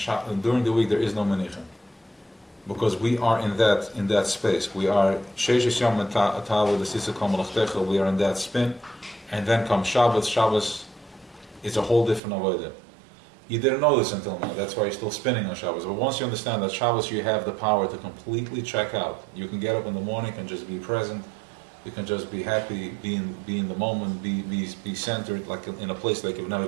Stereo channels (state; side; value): drops out; left; at 12.2 s